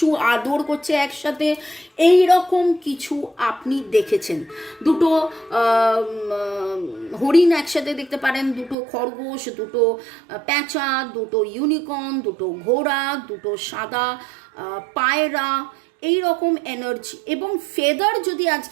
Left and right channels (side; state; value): left; drops out; at 8.8 s